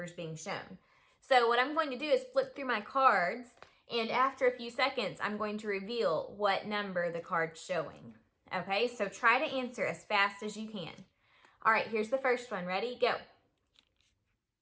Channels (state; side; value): identical; both; correlation 1.00